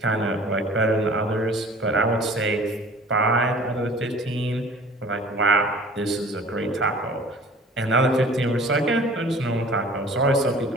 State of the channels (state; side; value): normal; both; correlation 0.47